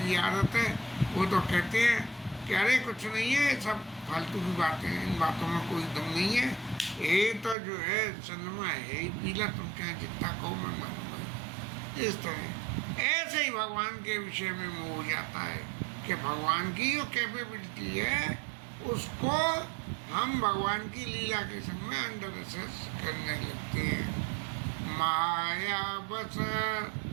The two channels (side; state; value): left; drops out; at 7.6 s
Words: की आदत है, वो तो कहते हैं कि अरे कुछ नहीं है, सब फालतू की बातें हैं, इन बातों में कोई दम नहीं है, ये तो जो है चंद्रमा है ही पीला, तुम चाहे जितना कहो मैं मानूंगा। इस तरह ऐसे ही भगवान के विषय में मोह हो जाता है कि भगवान की जो कैपेबिलिटी है उसको हम भगवान की लीला के संग में अंडर एसेस करने लगते हैं। माया बस